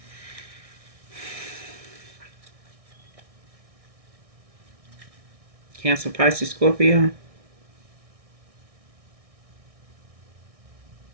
Cancer, Pisces, Scorpio.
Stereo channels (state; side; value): late; left; 1.6 ms